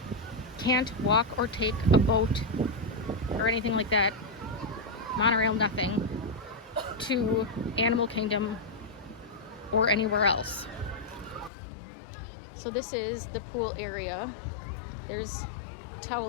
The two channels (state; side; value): drops out; right; at 11.5 s